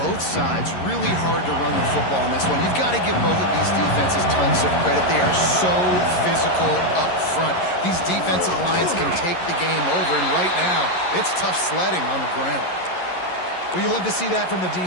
sides really hard to run the football in this one. You've got to give both of these defenses tons of credit. They are so physical up front. These defensive lines can take the game over, and right now, it's tough sledding on the ground. Well, you love to see that from the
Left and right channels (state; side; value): late; right; 11 ms